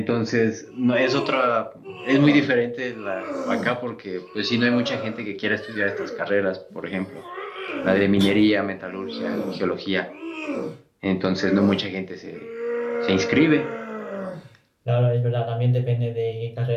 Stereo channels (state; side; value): identical; both; correlation 1.00